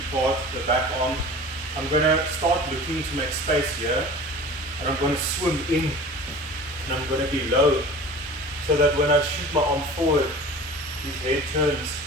part, the back arm. I'm going to start looking to make space here, and I'm going to swim in, and I'm going to be low, so that when I shoot my arm forward, his head turns,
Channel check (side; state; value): both; normal; correlation 0.39